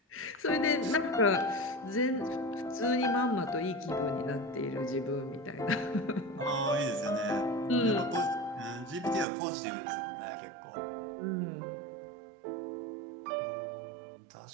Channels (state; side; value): drops out; left; at 9.2 s